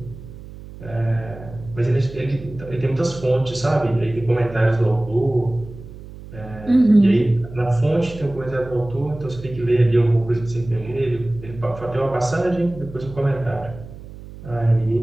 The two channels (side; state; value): right; noise; hum, 15 dB below the sound